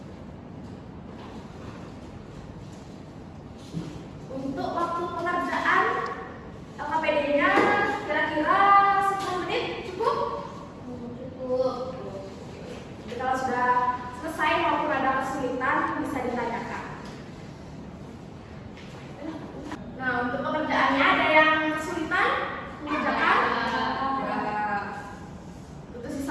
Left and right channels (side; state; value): both; identical; correlation 1.00